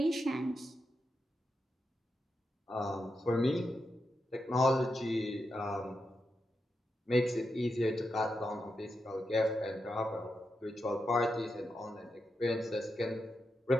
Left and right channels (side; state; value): both; normal; correlation 0.87